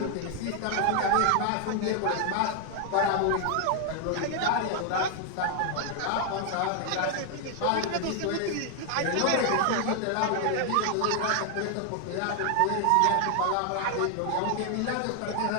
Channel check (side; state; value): both; different; correlation 0.00